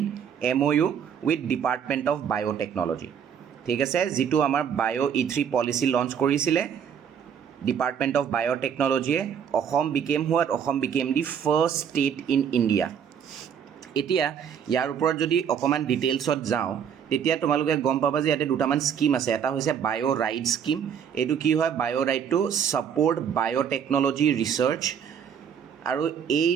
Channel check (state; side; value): quieter; left; 7.9 dB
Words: MOU with Department of Biotechnology। ঠিক আছে, যিটো আমাৰ বায়ো E3 পলিচি লঞ্চ কৰিছিলে Department of Biotechnology, Assam became the first state in India. এতিয়া ইয়াৰ ওপৰত যদি অকমান ডিটেইলছত যাওঁ তেতিয়া তোমালোকে গম পাবা যে ইয়াতে দুটামান স্কিম আছে। এটা হৈছে বায়ো ৰাইট স্কিম। এইটো কি হয়, বায়ো right to support biotechnology research. আৰু